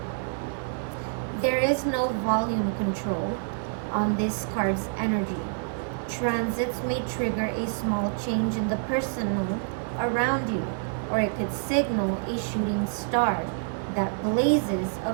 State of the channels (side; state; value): left; silent; digital silence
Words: There is no volume control on this card's energy. Transits may trigger a small change in the personal around you, or it could signal a shooting star that blazes